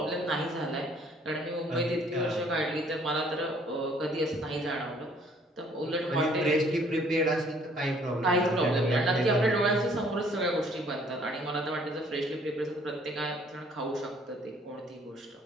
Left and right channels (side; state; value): both; normal; correlation 0.60